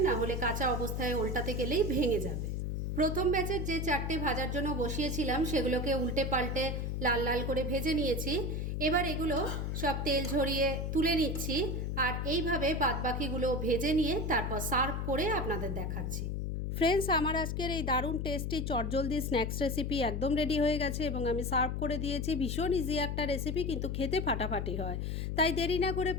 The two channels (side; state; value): left; noise; hum, 2 dB below the sound